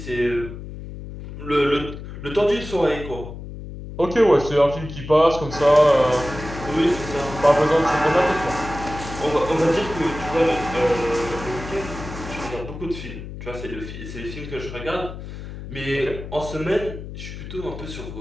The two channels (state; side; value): noise; left; hum, 11 dB below the sound